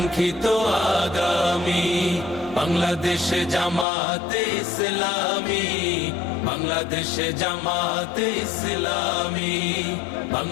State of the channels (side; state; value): right; drops out; at 3.9 s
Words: আগামী। বাংলাদেশ জামাতে ইসলামী, বাংলাদেশ জামাতে ইসলামী,